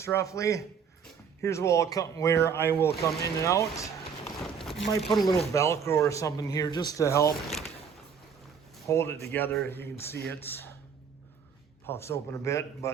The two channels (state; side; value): quieter; left; 6.6 dB